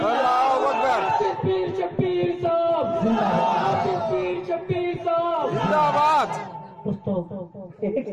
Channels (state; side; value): identical; both; correlation 1.00